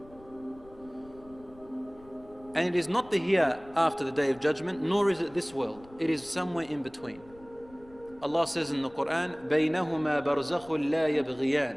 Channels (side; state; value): left; noise; rumble, 24 dB below the sound